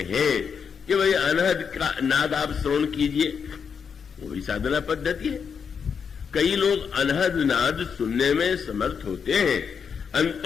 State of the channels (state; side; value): quieter; right; 6.5 dB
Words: कि भाई अनहद का नाद आप श्रवण कीजिए, वही साधना पद्धति है। कई लोग अनहद नाद सुनने में समर्थ होते हैं।